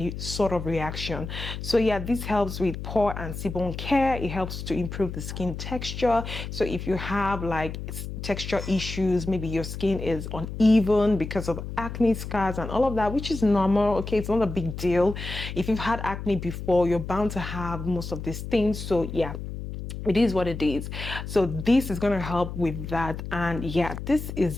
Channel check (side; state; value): left; noise; hum, 7 dB below the sound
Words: sort of reaction. So yeah, this helps with pore and sebum care. It helps to improve the skin texture. So if you have like texture issues, maybe your skin is uneven because of acne scars and all of that, which is normal. Okay, it's not a big deal. If you've had acne before, you're bound to have most of these things. So yeah, it is what it is. So this is going to help with that. And yeah, this